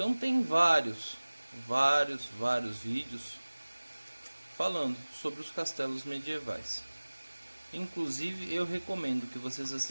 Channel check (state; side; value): inverted; both; correlation -1.00